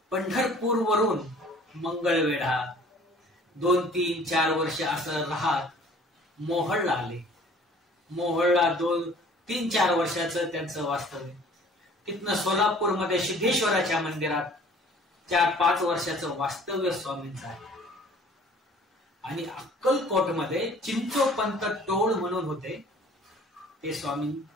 पंढरपूरवरून मंगळवेढा 2, 3, 4 वर्ष असं राहत मोहोळला आले. मोहोळला 2, 3, 4 वर्षाचं त्यांचं वास्तव्य. तिथनं सोलापूरमध्ये सिद्धेश्वराच्या मंदिरात 4-5 वर्षाचं वास्तव्य स्वामींचं आहे. आणि अक्कलकोटमध्ये चिंचोपंत टोळ म्हणून होते, ते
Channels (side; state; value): both; normal; correlation 0.52